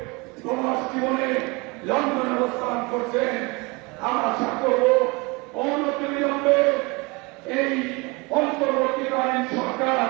সমাজ জীবনে লন্ডনে অবস্থান করছেন। আমরা আশা করব অনতিবিলম্বে এই অন্তর্বর্তীকালীন সরকার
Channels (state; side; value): quieter; left; 26.8 dB